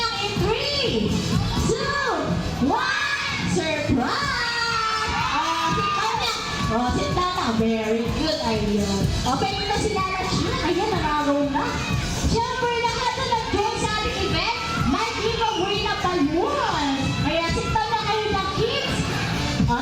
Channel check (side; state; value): both; identical; correlation 1.00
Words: in 3, 2, 1, surprise! Oh, sit down na. Very good idea. Okay, ito si Lala Chan. Ayan, nakagaw na. Siyempre, lahat na nag-join sa ating event, may giveaway na balloon. Kaya sit down na kayo ng kids. O,